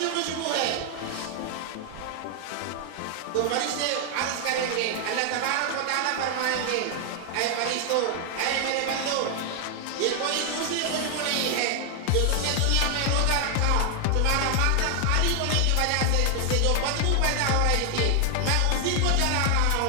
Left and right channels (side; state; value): both; different; correlation 0.00